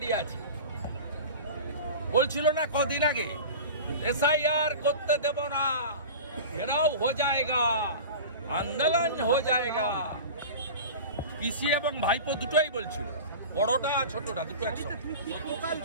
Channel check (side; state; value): both; inverted; correlation -0.33